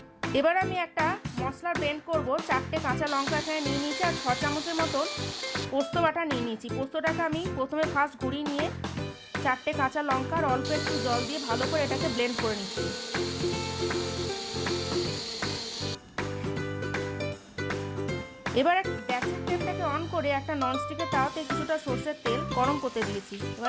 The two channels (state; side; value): identical; both; correlation 1.00